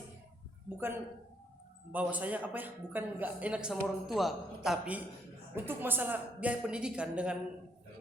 bukan bahwa saya bukan nggak enak sama orang tua, tapi untuk masalah biaya pendidikan dengan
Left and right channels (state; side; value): normal; both; correlation 0.69